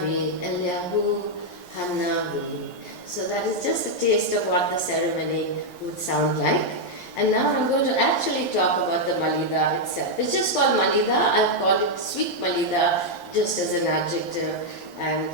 Eliyahu Hanavi. So that is just a taste of what the ceremony would sound like. And now I'm going to actually talk about the Malida itself. It's just called Malida. I've called it sweet Malida just as an adjective and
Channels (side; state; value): right; late; 11 ms